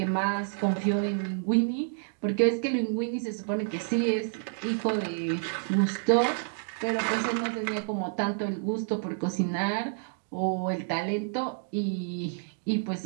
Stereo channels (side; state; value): left; silent; digital silence